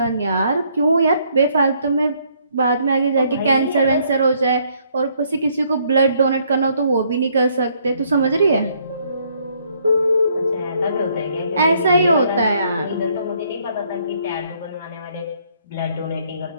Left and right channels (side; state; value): both; inverted; correlation -0.68